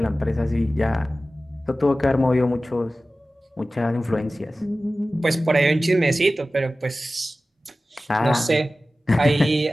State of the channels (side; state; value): both; normal; correlation 0.96